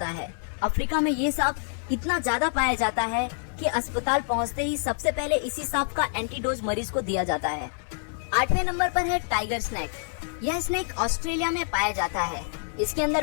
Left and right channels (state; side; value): silent; right; digital silence